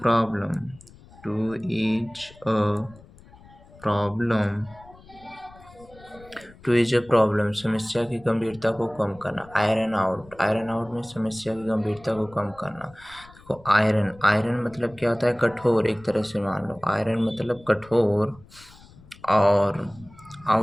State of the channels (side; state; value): left; noise; rumble, 23 dB below the sound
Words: problem, समस्या की गंभीरता को कम करना. आयरन आउट में समस्या की गंभीरता को कम करना. देखो, आयरन मतलब क्या होता है? कठोर. एक तरह से मान लो आयरन मतलब कठोर और